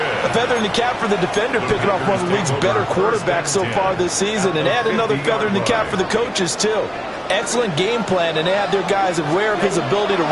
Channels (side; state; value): both; identical; correlation 1.00